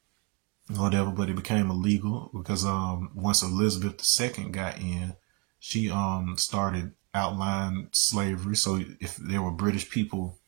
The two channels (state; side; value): quieter; left; 29.8 dB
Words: Whatever, but it became illegal because once Elizabeth II got in, she started outlawing slavery. So if there were British people,